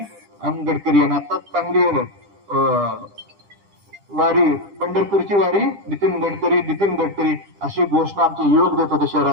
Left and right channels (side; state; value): left; late; 10 ms